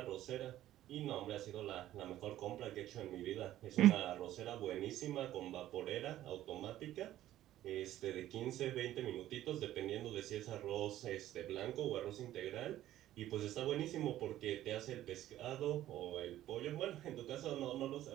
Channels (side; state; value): left; quieter; 13.4 dB